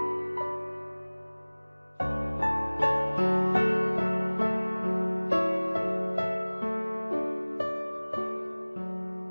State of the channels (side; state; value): both; inverted; correlation -1.00